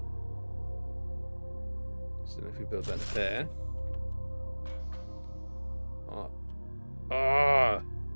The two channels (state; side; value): inverted; both; correlation -1.00